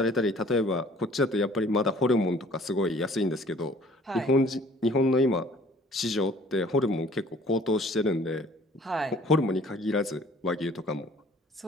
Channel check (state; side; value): normal; both; correlation 0.53